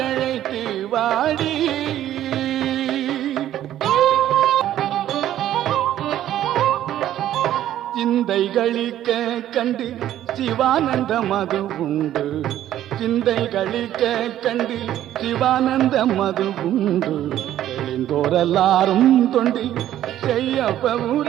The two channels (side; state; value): left; quieter; 12.3 dB